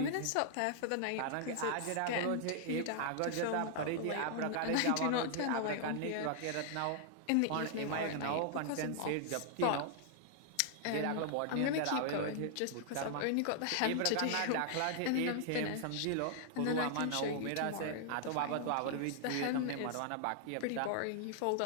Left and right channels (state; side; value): different; both; correlation -0.01